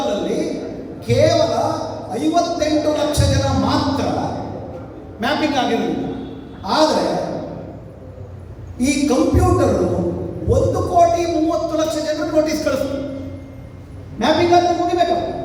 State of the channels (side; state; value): both; identical; correlation 1.00